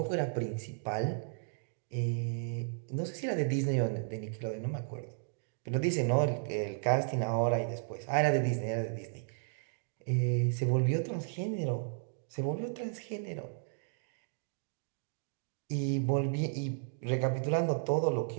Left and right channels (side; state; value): left; silent; digital silence